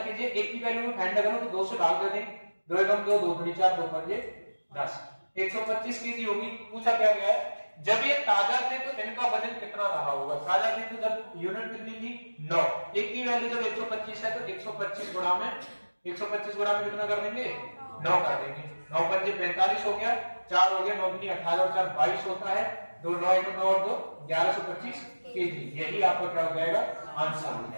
केजी, 1 की वैल्यू में फाइंड करो तो 2 से भाग दे दें, 2 एकम 2, 2 दूनी 4, 2 पंजे 10, 125 केजी होगी। पूछा क्या गया है, जब ये ताजा थे तो इनका वजन कितना रहा होगा। ताजा थे तो जब यूनिट कितनी थी 9, 1 की वैल्यू जब 125 है तो 125 गुणा में 125 गुणा में कितना कर देंगे, 9 कर देंगे। 9 पंजे 45 हो गया, 4 हो गया, 9 दूनी 18 और 4 22 होता है, 2 9 1 9 और 2 1125 केजी। यही आपका क्या हो जाएगा, आंसर हो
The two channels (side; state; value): both; inverted; correlation -1.00